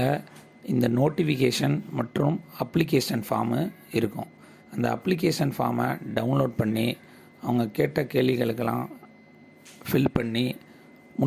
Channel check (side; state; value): both; identical; correlation 1.00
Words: இந்த நோட்டிஃபிகேஷன் மற்றும் அப்ளிகேஷன் ஃபார்மு இருக்கும். அந்த அப்ளிகேஷன் ஃபார்மை டவுன்லோட் பண்ணி அவங்க கேட்ட கேள்விகளுக்கெல்லாம் ஃபில் பண்ணி